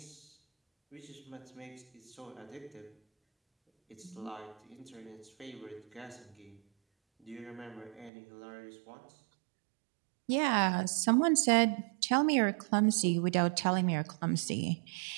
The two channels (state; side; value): drops out; left; at 8.1 s